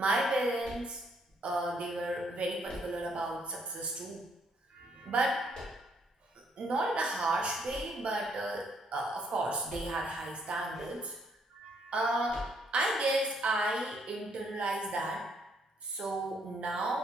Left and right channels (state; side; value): normal; both; correlation 0.70